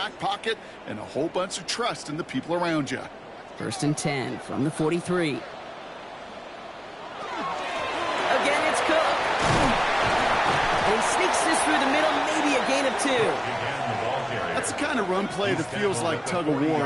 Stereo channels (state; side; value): identical; both; correlation 1.00